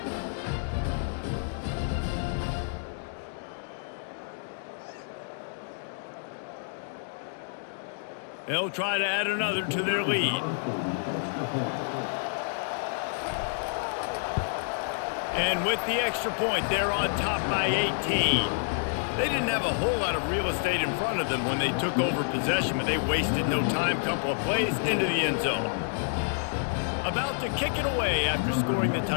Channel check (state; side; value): silent; right; digital silence